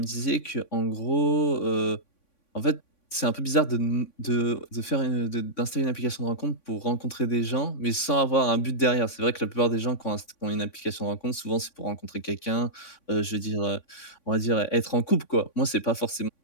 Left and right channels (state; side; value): late; right; 3.6 ms